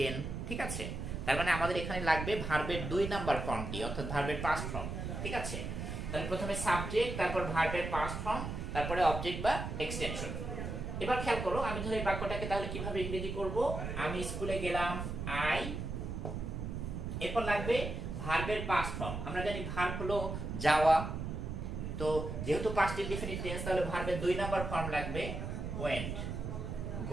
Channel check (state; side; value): noise; right; rumble, 5 dB below the sound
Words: ঠিক আছে? তার মানে আমাদের এখানে লাগবে ভার্বের 2 নাম্বার ফর্মটি, অর্থাৎ ভার্বের পাস্ট ফর্ম। ঠিক আছে? তাহলে প্রথমে সাবজেক্ট, তারপর ভার্বের পাস্ট ফর্ম, তারপরে অবজেক্ট বা এক্সটেনশন। এবার খেয়াল করো, আমি ধরে বাক্যটাকে তাহলে কিভাবে ইংরেজি করব? আমি স্কুলে গেলাম, আই। এরপর লাগবে ভার্বের পাস্ট ফর্ম। আমরা জানি ভার্ব হলো যাওয়া। তো যেহেতু পাস্ট ইনডিফিনিট টেন্স, তাহলে ভার্বের 2 নাম্বার ফর্ম লাগবে ওয়েন্ট।